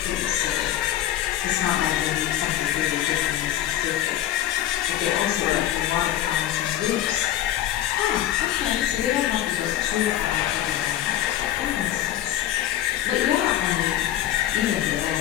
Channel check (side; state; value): right; quieter; 12.6 dB